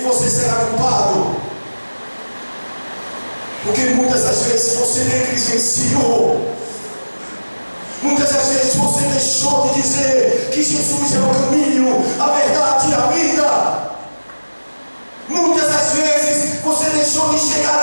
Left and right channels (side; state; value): both; inverted; correlation -1.00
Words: você será culpado. Porque muitas das vezes você negligenciou. Muitas das vezes você deixou de dizer que Jesus é o caminho, a verdade e a vida. Muitas das vezes você deixou de chegar